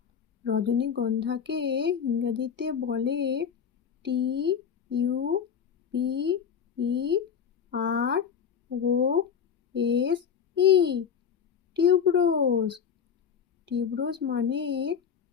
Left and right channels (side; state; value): right; quieter; 7.4 dB